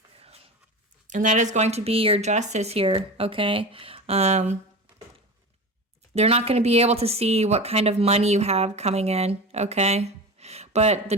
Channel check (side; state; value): both; normal; correlation 0.29